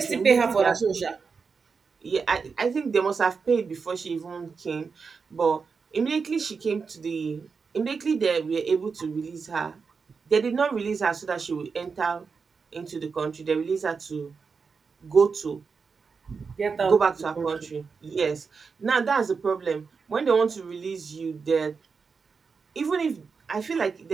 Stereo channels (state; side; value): quieter; left; 5.2 dB